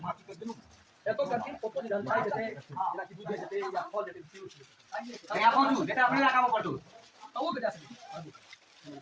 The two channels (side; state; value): both; identical; correlation 1.00